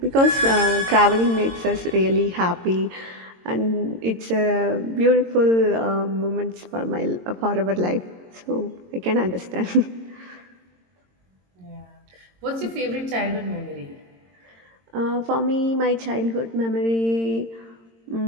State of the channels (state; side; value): late; left; 22 ms